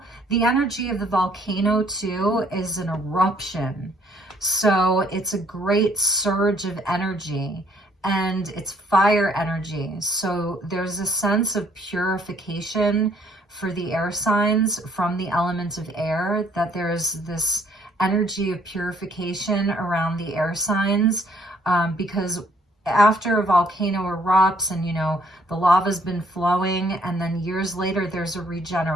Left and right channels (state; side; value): normal; both; correlation 0.64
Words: the energy of the volcano too is an eruption. So it's a great surge of energy and it's fire energy. So there's a sense of purification for the air signs from the element of air, that there's this energy of purification around the air signs because after a volcano erupts and, you know, the lava's been flowing and then years later there's a